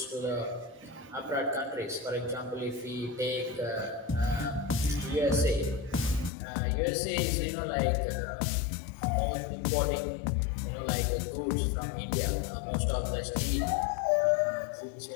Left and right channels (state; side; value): drops out; right; at 6.3 s